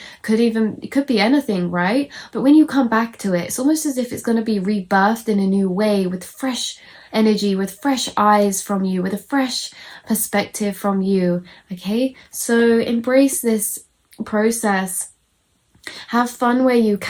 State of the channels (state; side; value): identical; both; correlation 1.00